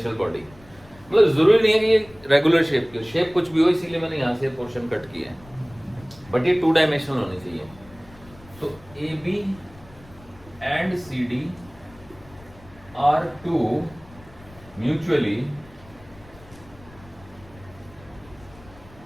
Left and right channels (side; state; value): left; noise; rumble, 23 dB below the sound